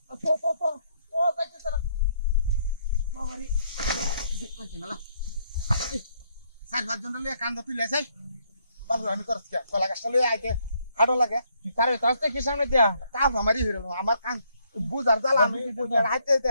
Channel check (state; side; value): inverted; both; correlation -0.71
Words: তো বাইতে চলা বাবারি দেখতে না সার ভাত জন লয়ে কান্দা তুই লেছাই বাবু আমি করছ কা কলা গাছটা লয়ে আইতে হাড়ো লাগে কারে তাস্তে কি সামনে দিয়া কাপ আমারই হইলো আমার কান বুজার জ্বালা আমি বুজার হাইতে